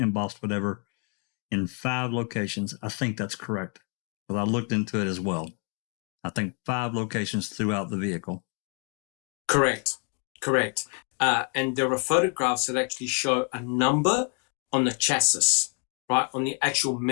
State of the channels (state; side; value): quieter; right; 38.2 dB